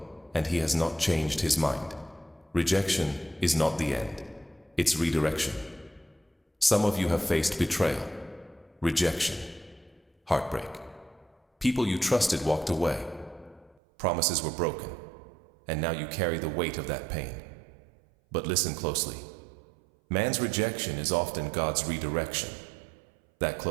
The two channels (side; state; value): left; drops out; at 13.8 s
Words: and He has not changed His mind. Rejection is not the end. It's redirection. Some of you have faced betrayal, rejection, heartbreak. People you trusted walked away. Promises were broken, and now you carry the weight of that pain. But listen closely. Man's rejection is often God's redirection. That